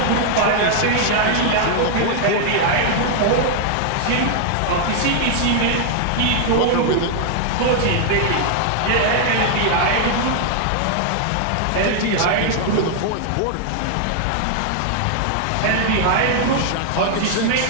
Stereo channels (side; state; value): both; different; correlation 0.00